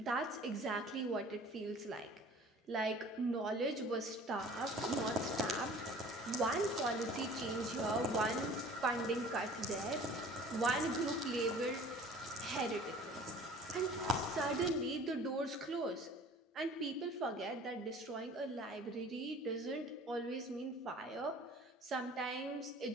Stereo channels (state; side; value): normal; both; correlation 0.47